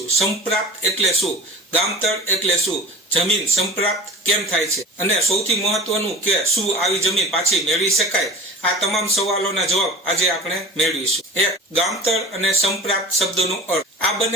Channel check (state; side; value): normal; both; correlation 0.37